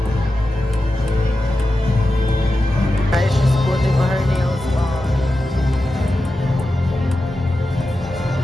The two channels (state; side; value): normal; both; correlation 0.92